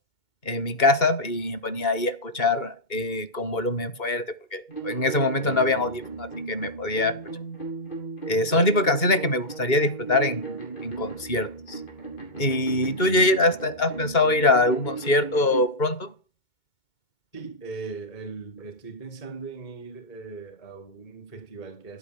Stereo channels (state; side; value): late; right; 2.2 ms